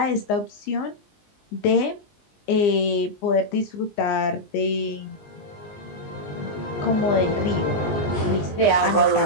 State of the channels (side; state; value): right; late; 20 ms